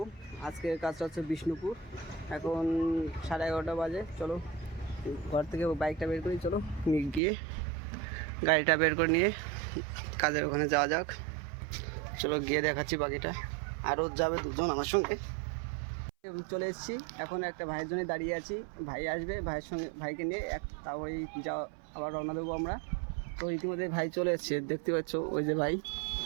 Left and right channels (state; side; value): drops out; left; at 7.2 s